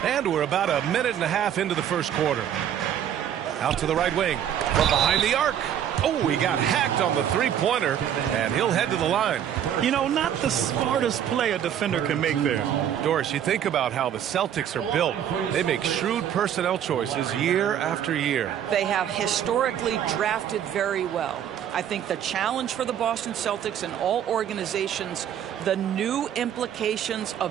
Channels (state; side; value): quieter; left; 9.8 dB